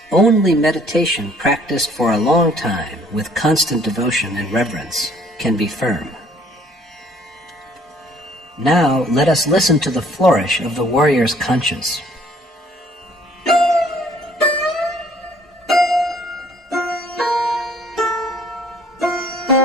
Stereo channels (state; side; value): normal; both; correlation 0.59